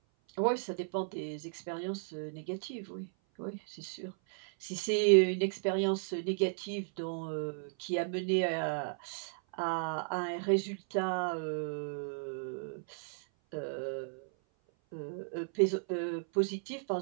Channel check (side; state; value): left; silent; 55 dB below the other